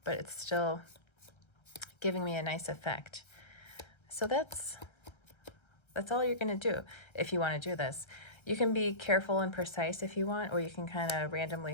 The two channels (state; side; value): late; right; 1.3 ms